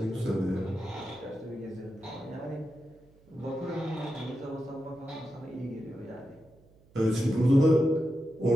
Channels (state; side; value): noise; right; hum, 29 dB below the sound